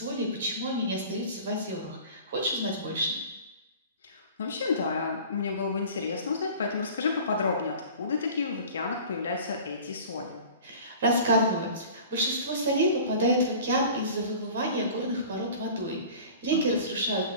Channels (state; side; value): inverted; both; correlation -0.42